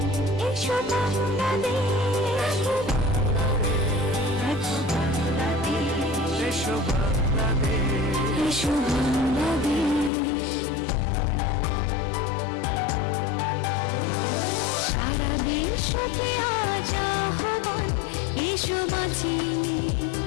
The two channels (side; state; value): right; drops out; at 10.1 s